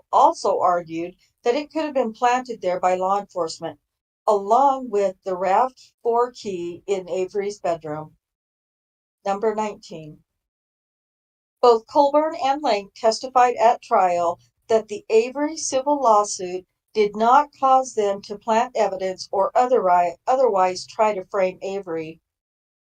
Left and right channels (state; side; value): identical; both; correlation 1.00